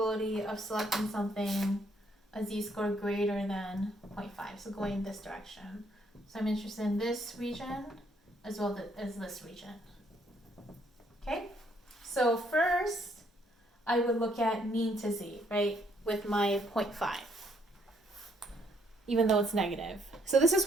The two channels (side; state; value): both; normal; correlation 0.69